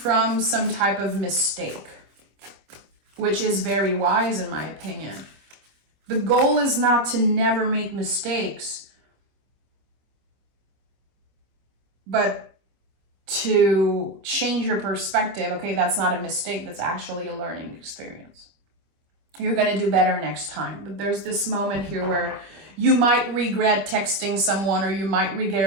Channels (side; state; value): left; late; 25 ms